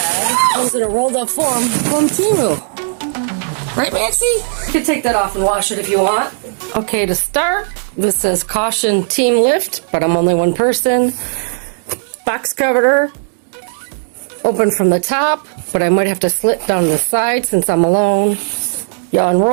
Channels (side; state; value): left; silent; digital silence